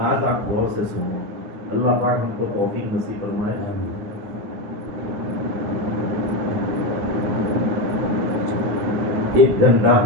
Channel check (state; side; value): late; left; 9.9 ms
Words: آپ غور سے سنو، اللہ پاک ہم کو توفیق نصیب فرمائے۔ 1 گھنٹہ